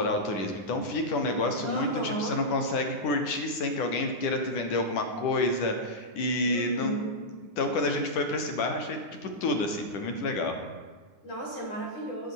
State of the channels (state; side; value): late; right; 10 ms